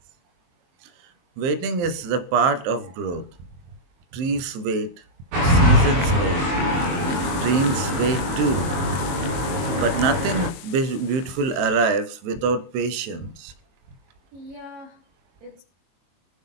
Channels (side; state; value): left; late; 22 ms